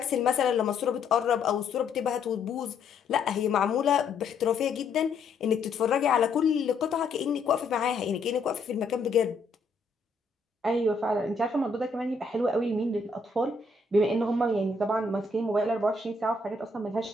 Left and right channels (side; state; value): right; quieter; 3.7 dB